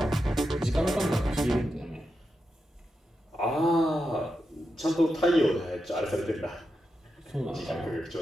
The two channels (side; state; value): both; normal; correlation 0.88